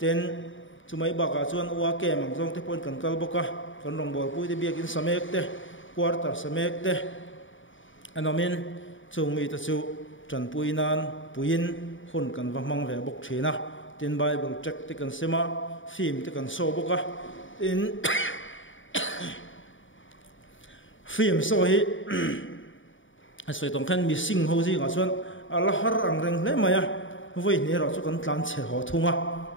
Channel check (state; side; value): late; right; 0.56 ms